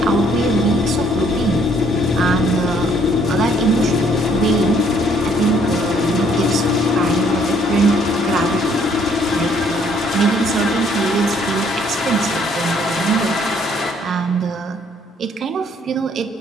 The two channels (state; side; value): normal; both; correlation 0.64